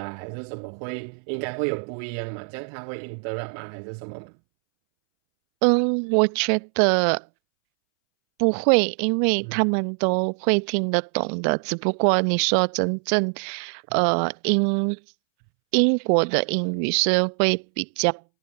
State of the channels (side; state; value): left; silent; 63 dB below the other